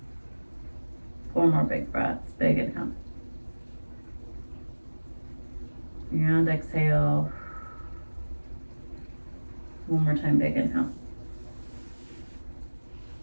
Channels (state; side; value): inverted; both; correlation -1.00